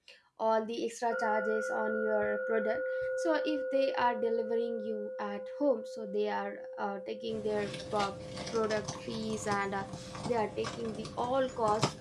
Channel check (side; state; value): both; identical; correlation 1.00